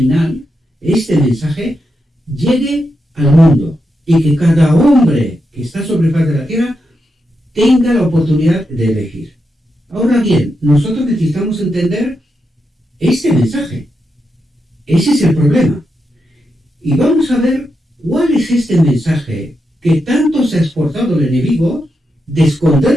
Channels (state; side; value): normal; both; correlation 0.85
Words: este mensaje, llegue al mundo y que cada hombre que está sobre faz de la tierra tenga la oportunidad de elegir. Ahora bien, nosotros necesitamos entender este mensaje. Ese es el problema. Y vamos a ver cuál es este mensaje que tanto se ha esforzado el enemigo de